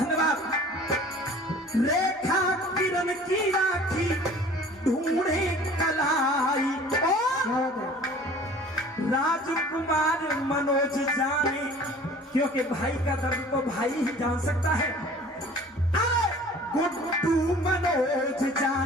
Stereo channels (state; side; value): normal; both; correlation 0.47